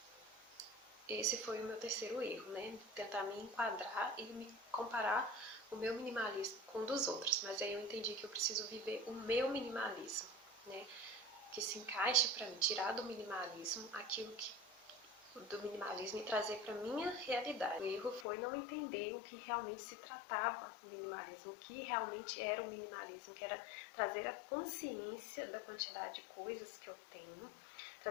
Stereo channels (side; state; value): right; drops out; at 18.2 s